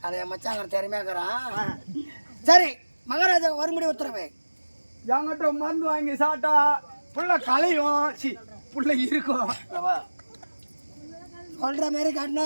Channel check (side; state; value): both; inverted; correlation -1.00